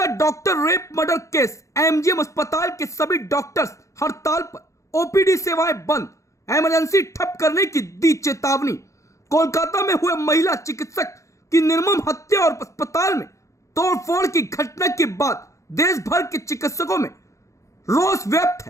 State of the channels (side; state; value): right; late; 0.15 ms